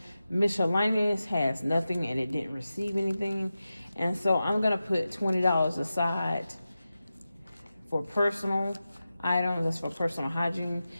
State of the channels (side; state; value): both; inverted; correlation -0.93